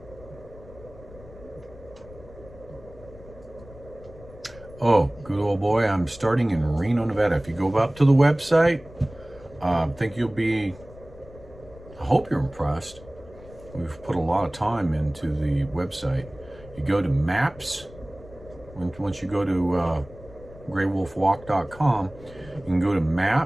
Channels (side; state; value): left; noise; rumble, 20 dB below the sound